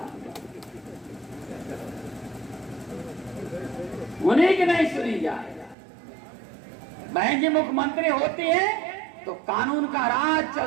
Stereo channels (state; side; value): drops out; left; at 5.8 s